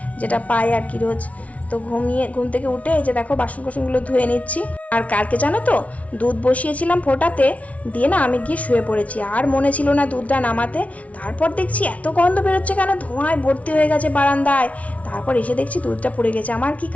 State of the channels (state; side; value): late; right; 0.067 ms